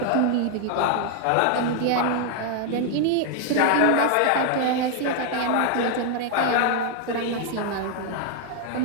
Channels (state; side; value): different; both; correlation 0.00